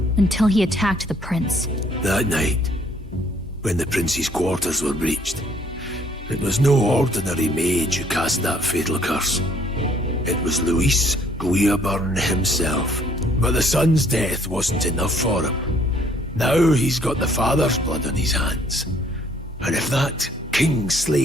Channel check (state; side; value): normal; both; correlation 0.62